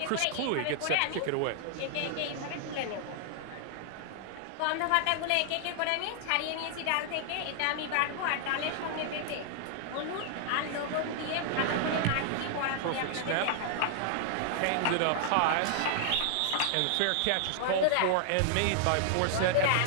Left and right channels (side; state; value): both; different; correlation -0.01